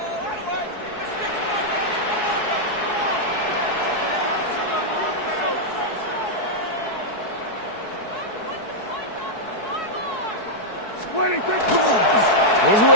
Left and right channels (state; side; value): late; right; 4.7 ms